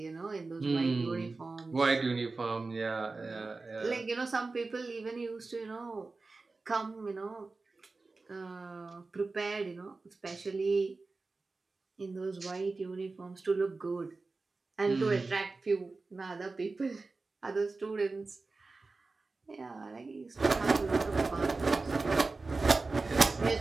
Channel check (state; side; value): quieter; left; 3.7 dB